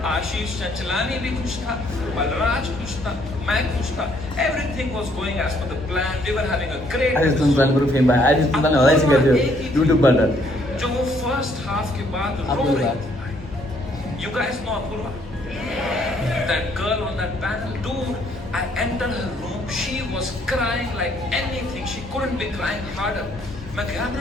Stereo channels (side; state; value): both; normal; correlation 0.67